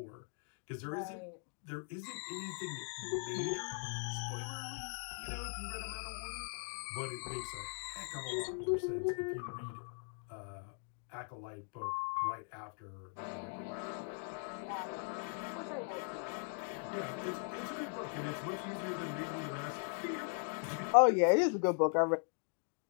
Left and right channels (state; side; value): silent; right; 51 dB below the other